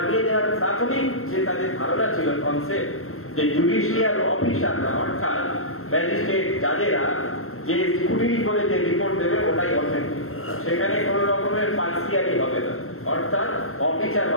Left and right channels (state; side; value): late; right; 0.62 ms